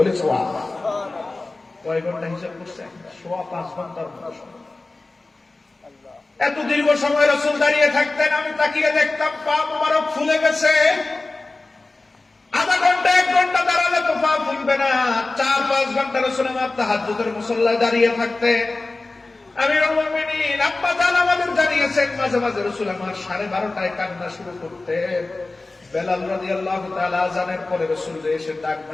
সুবহানাল্লাহ। কয় ঘন্টা হিসাব করছেন? 5.5 ঘন্টার মতো সময়। এত দীর্ঘ সময় রাসূল দাঁড়িয়ে থাকতেন। আমি তাকিয়ে দেখতাম পা মোবারক ফুলে গেছে। আধা ঘন্টা 1 ঘন্টা দাঁড়ালে তো পা ফুলবে না, 4-5 ঘন্টা রাসূল আমার তাহাজ্জুদের মুসল্লায় দাঁড়িয়ে থাকতেন। আমিরুল মুমিনিন আব্বা জান আমাদের জানিয়েছেন, মাঝে মাঝে রাসূল আমার 12:30টায় কান্না শুরু করতেন। বেলাল রাদিয়াল্লাহু তাআলা আযানের পরে রাসূল এসে ডাক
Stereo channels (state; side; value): quieter; right; 3.2 dB